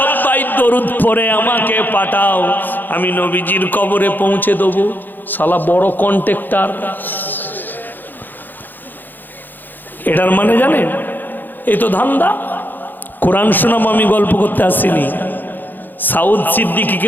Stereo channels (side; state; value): right; late; 0.089 ms